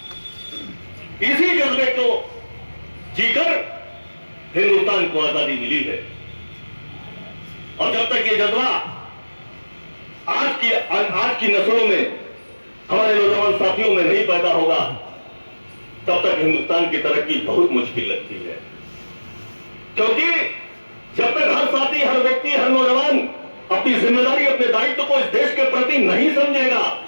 इसी जज्बे को जीकर हिंदुस्तान को आजादी मिली है। और जब तक ये जज्बा आज की नस्लों में, हमारे नौजवान साथियों में नहीं पैदा होगा, तब तक हिंदुस्तान की तरक्की बहुत मुश्किल लगती है। क्योंकि जब तक हर साथी, हर व्यक्ति, हर नौजवान अपनी जिम्मेदारी, अपने दायित्व को इस देश के प्रति नहीं समझेगा,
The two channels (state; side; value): inverted; both; correlation -1.00